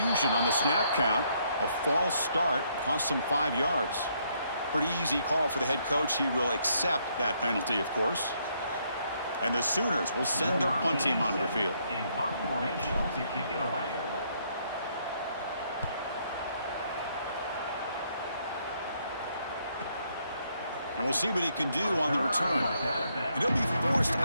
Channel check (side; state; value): both; inverted; correlation -0.72